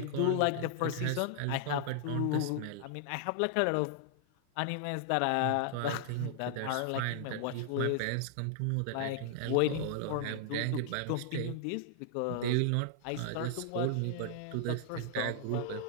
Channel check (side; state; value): both; different; correlation -0.01